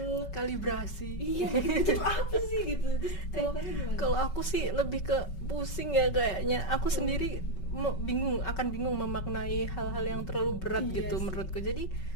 Kalibrasi. Iya, itu tuh apa sih gitu. Terus kalau kamu gimana? Kalau aku sih lebih ke pusing ya kayaknya. Aku sendiri akan bingung memaknai hal-hal yang terlalu berat Iya gitu sih. menurutku. Jadi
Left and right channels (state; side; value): late; right; 5.3 ms